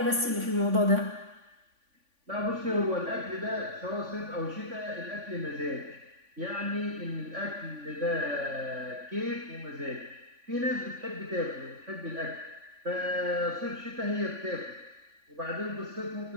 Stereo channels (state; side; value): late; left; 3.5 ms